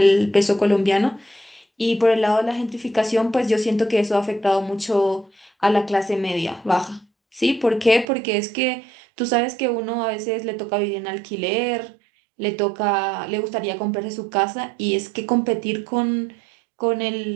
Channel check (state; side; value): drops out; left; at 8.1 s